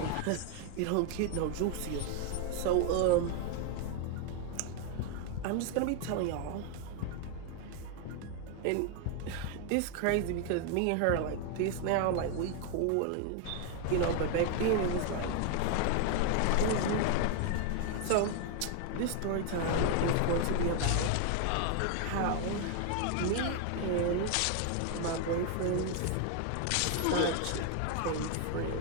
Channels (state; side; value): different; both; correlation 0.01